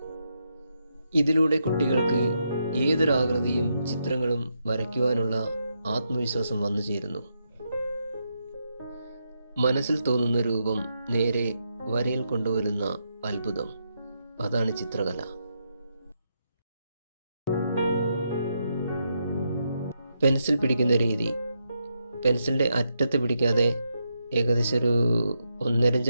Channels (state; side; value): inverted; both; correlation -0.82